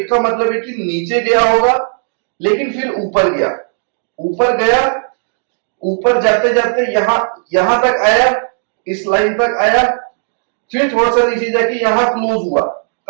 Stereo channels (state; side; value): silent; left; digital silence